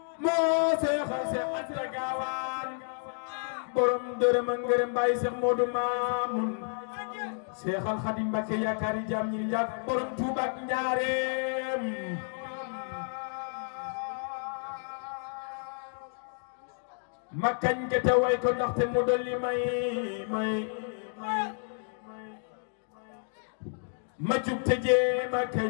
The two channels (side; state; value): right; silent; digital silence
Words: moo seexal Seex Anta Gaawaan borom dërëm ak ngërëm Baay Seex Moodu Maamun seexal Xaadim Mbàkke yaakaari jaam ñi njàkk borom Tuuba ak Njaareem ma kañ ke te way ko ndaxte mu dolli may ma jug te jee ma